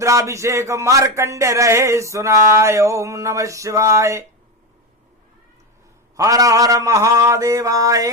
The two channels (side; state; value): both; normal; correlation 0.14